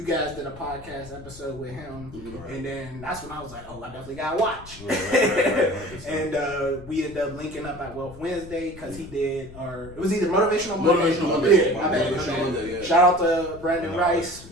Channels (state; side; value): noise; left; rumble, 17 dB below the sound